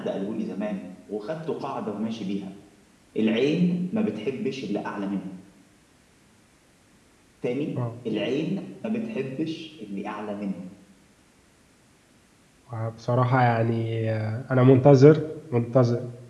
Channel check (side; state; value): both; identical; correlation 1.00